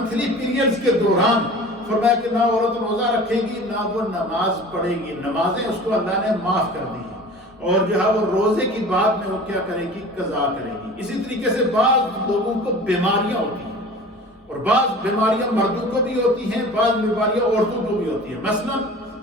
پیریڈز کے دوران فرمایا کہ نہ عورت روزہ رکھے گی نہ وہ نماز پڑھے گی، نمازیں اس کو اللہ نے معاف کر دی ہیں، اور جو ہے وہ روزے کی بعد میں وہ کیا کرے گی، قضا کرے گی۔ اسی طریقے سے بعض لوگوں کو بیماریاں ہوتی ہیں، اور بعض بیماریاں مردوں کو بھی ہوتی ہیں، بعض بیماریاں عورتوں کو بھی ہوتی ہیں۔ مثلا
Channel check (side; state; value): both; normal; correlation 0.40